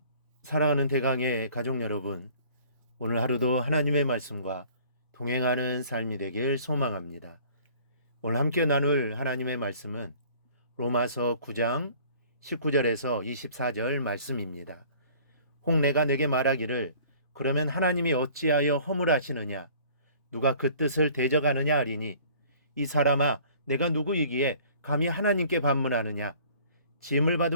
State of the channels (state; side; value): inverted; both; correlation -0.52